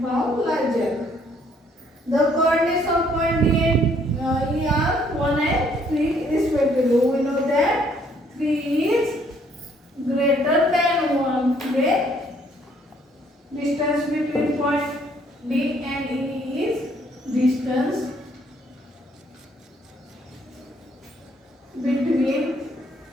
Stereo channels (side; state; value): both; normal; correlation 0.65